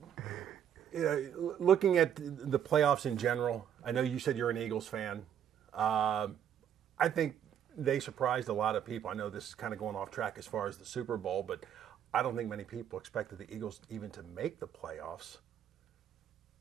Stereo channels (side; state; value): left; quieter; 9.3 dB